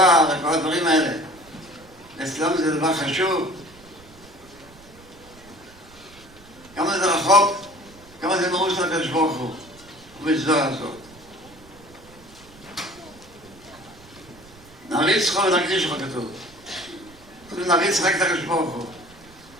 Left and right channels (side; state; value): right; noise; rumble, 24 dB below the sound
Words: וכל הדברים האלה, אצלם זה דבר חשוב. כמה זה רחוק, כמה זה מרוץ לקדוש ברוך הוא, ובזוהר הזאת. נריץ חו ונקדיש חו כתוב. נריץ רק את הקדוש ברוך הוא.